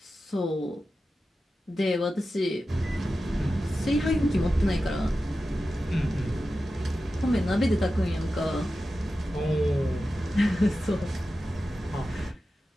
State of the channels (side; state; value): both; normal; correlation 0.92